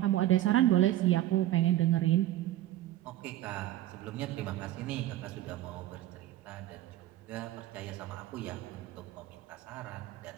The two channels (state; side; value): quieter; left; 14.2 dB